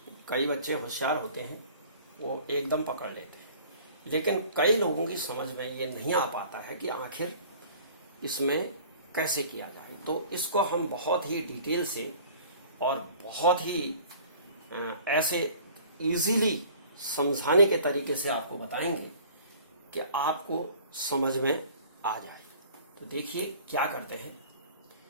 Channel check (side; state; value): both; inverted; correlation -0.48